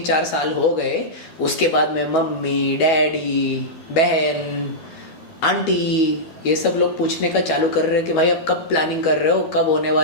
साल हो गए, उसके बाद में मम्मी, डैडी, बहन, आंटी, ये सब लोग पूछने का चालू कर रहे हैं कि भाई अब कब प्लानिंग कर रहे हो, कब होने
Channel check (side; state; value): right; late; 12 ms